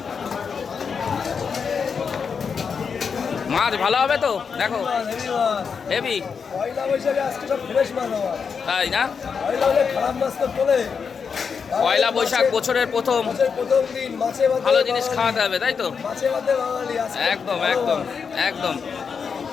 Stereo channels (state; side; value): quieter; right; 6.0 dB